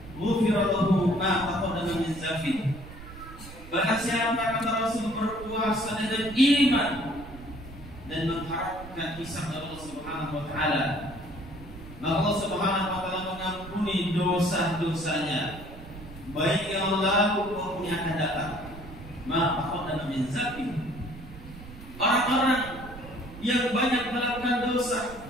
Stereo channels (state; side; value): noise; right; rumble, 15 dB below the sound